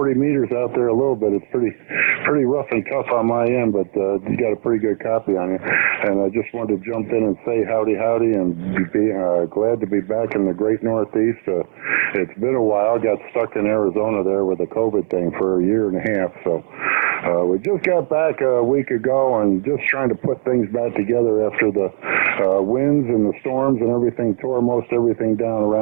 meters out there a little bit. It's pretty rough and tough on my end, but you got a pretty good copy on you. And I just wanted to jump in and say howdy and be glad to be back in the great Northeast. It's been a while. Got stuck in Arizona there with the COVID thing for a year and a half. So we just got back a week ago and just trying to put things back together after the winds and the storms and everything tore most everything down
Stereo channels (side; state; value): left; silent; 55 dB below the other